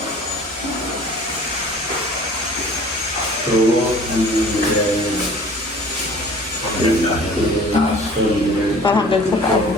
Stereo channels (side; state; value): both; normal; correlation 0.48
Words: So, Para hanggang sa taas.